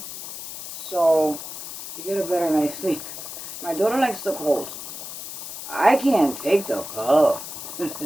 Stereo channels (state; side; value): noise; left; hiss, 9 dB below the sound